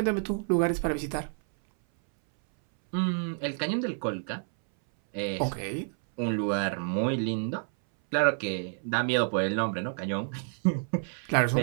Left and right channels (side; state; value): left; silent; 59 dB below the other